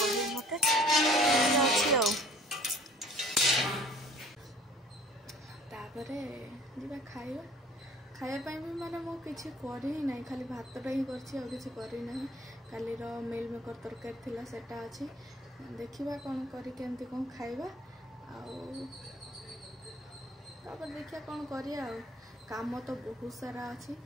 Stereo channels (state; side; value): normal; both; correlation 0.53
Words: मत अच्छी खाइबा खायापाई भी माने मो किसी करी ना खाली भातटा ही करना काली मिल मेकर तरकारी थिला सेटा अच्छी देखिबा कौन करके कौन खाइबा तापर देखिया कौन करिया काम तो बहुत सारा अच्छी